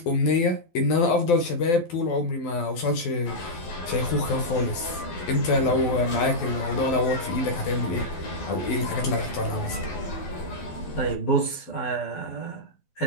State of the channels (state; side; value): late; right; 12 ms